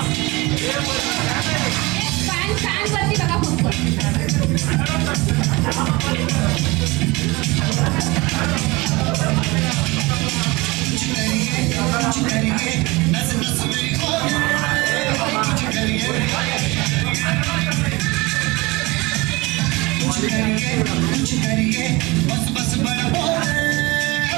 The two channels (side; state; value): left; quieter; 23.4 dB